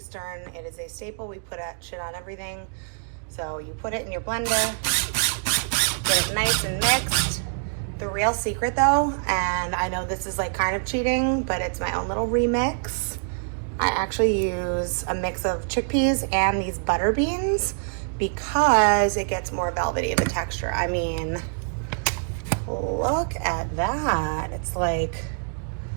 it is a staple. We put shit on everything. So you put it in your blender, get it nice and mixed. The real secret though, and I know this is like kind of cheating, but it's my own little remix. I actually use a mix of chickpeas and these butter beans because it gets more velvety of a texture. I mean, look at that. It's like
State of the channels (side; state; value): left; silent; digital silence